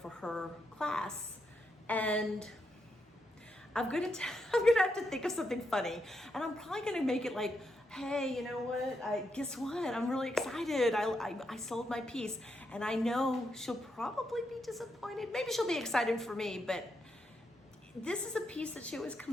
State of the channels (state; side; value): normal; both; correlation 0.82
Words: her class, and I'm gonna have to think of something funny, and I'm probably gonna make it like, hey, you know what? Guess what? I'm really excited. I sold my piece, and I know she'll probably be disappointed. Maybe she'll be excited for me, but this is a piece that she always